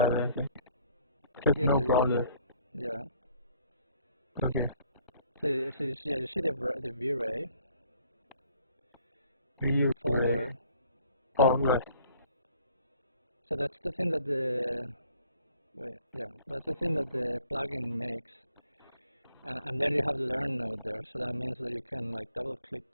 anything. Just Yeah, no so browser. yeah. Okay. Yeah, you see the VRAI EU folder. Oh, right. So that's the thing that that's the thing that the plugin makes. And then you have the learn node there, so that means that you can like double click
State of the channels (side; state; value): both; inverted; correlation -0.60